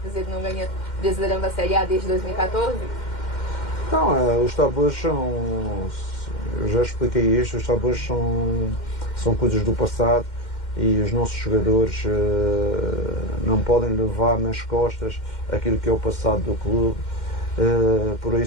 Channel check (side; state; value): right; late; 2.1 ms